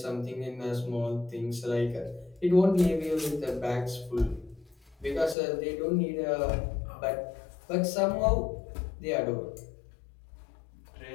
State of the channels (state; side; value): drops out; right; at 5.4 s